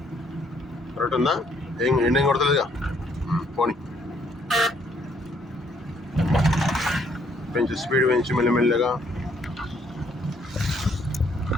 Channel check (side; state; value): both; normal; correlation 0.68